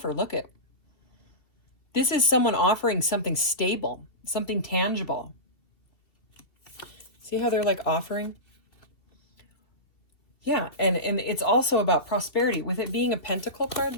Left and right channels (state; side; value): late; right; 2.7 ms